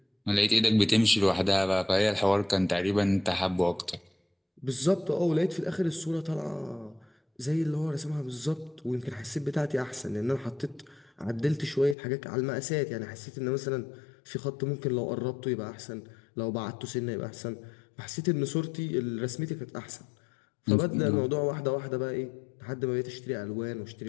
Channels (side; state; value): right; drops out; at 12.0 s